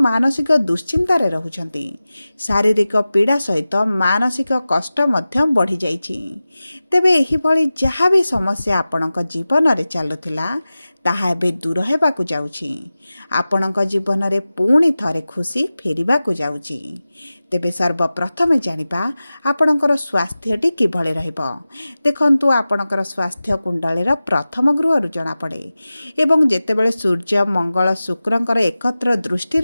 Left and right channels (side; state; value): both; inverted; correlation -0.96